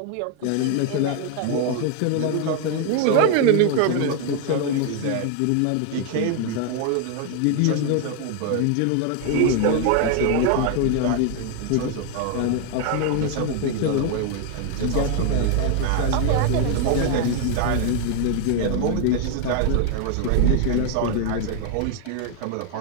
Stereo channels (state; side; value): different; both; correlation 0.00